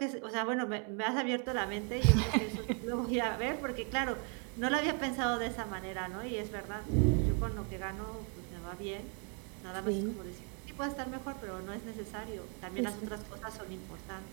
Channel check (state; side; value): quieter; left; 38.6 dB